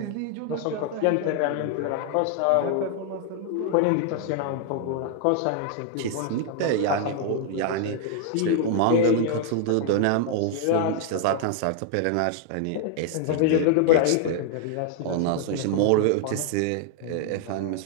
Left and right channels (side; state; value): both; different; correlation 0.00